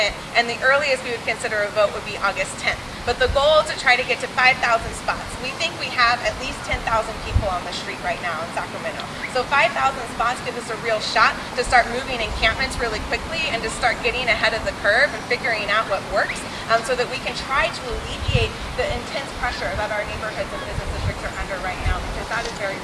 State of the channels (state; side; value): identical; both; correlation 1.00